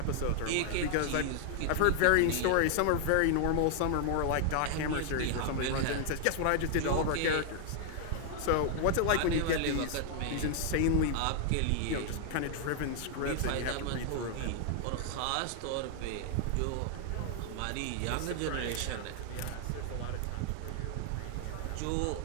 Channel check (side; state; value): both; different; correlation 0.00